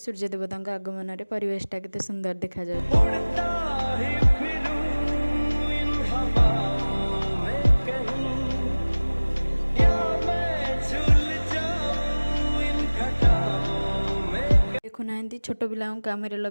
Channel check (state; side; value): inverted; both; correlation -1.00